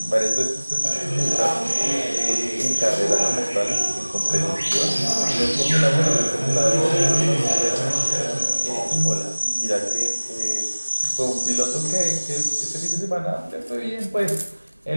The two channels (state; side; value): inverted; both; correlation -1.00